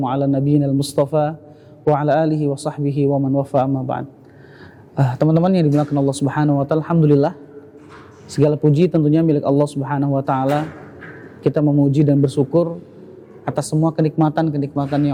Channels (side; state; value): both; identical; correlation 1.00